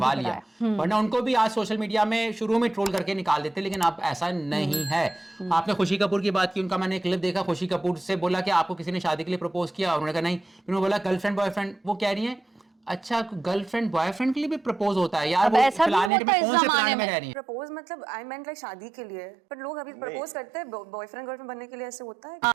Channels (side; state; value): left; drops out; at 16.1 s